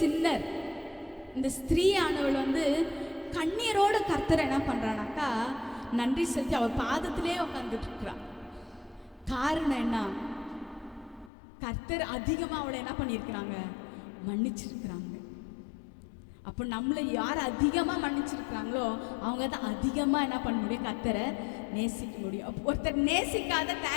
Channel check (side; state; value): right; drops out; at 11.3 s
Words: இந்த ஸ்திரீ ஆனவள் வந்து கண்ணீரோட கர்த்தரை என்ன பண்ணுறானாக்கா நன்றி செலுத்தி அவள் பாதத்திலே உட்காந்துட்டு இருக்கிறான். காரணம் என்ன? கர்த்தர் அதிகமாக அவளை என்ன பண்ணியிருக்கிறாங்க, மன்னிச்சிருக்கிறாங்க. அப்போ நம்மளை யார் அதிகமாக மன்னிச்சிருக்கிறாங்களோ அவங்க தான் அதிகமாக என்ன பண்ண முடியும், கர்த்தரை நேசிக்க முடியும். ஒருத்தர் நேசிக்காத